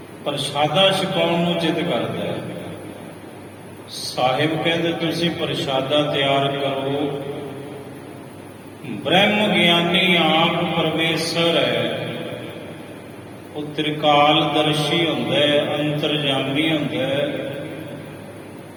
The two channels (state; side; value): identical; both; correlation 1.00